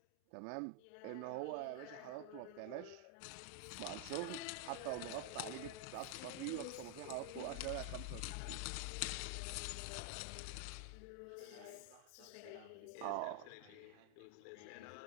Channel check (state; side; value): different; both; correlation 0.00